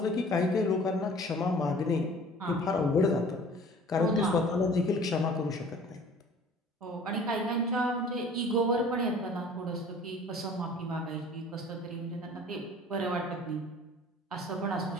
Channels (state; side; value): normal; both; correlation 0.48